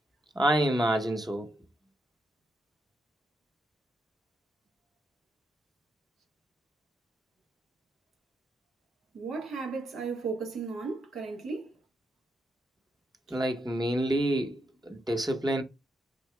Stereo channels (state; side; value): normal; both; correlation 0.81